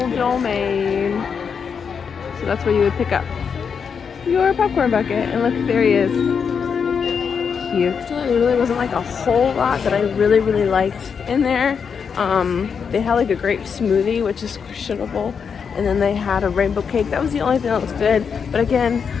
domain. So that's where you would pick up your popcorn bucket. And look, there he is. Cute. There really wasn't like a whole lot that I really, really liked in there. They had like a grape smoothie, which is questionable. And then they had a rainbow cake. That was the only thing that was good. But again,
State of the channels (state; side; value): quieter; right; 6.4 dB